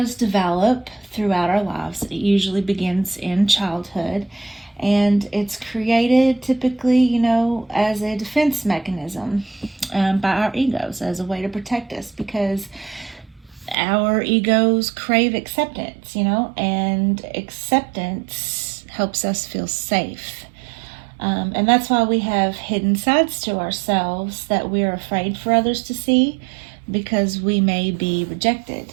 develop throughout our lives. It usually begins in childhood, and it's created typically, as a defense mechanism by our egos, as a way to protect us, because our egos crave acceptance, and acceptance helps us feel safe. And that's why we have hidden sides to ourselves that we're afraid for others to see, because we may be rejected.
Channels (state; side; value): drops out; left; at 13.8 s